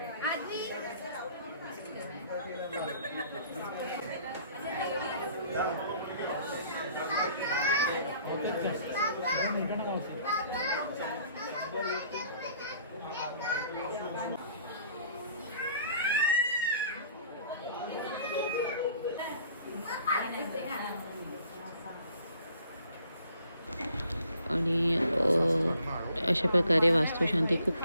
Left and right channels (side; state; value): both; inverted; correlation -0.57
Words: आजी आणि अशा प्रकारे वास्तुशांती खूप